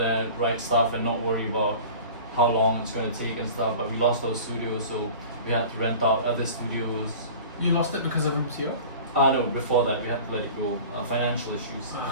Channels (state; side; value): inverted; both; correlation -0.40